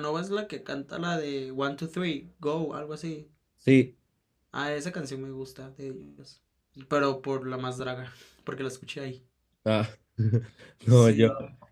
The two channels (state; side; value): identical; both; correlation 1.00